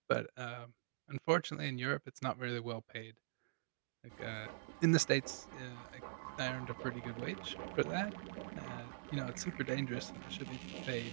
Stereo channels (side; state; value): left; silent; digital silence